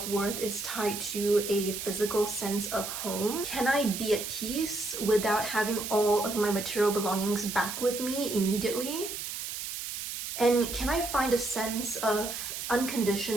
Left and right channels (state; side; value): noise; right; hiss, 6 dB below the sound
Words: is tied to a physical sense of home? Can I be at peace without having all of my material belongings back with me immediately? And can I find a sense of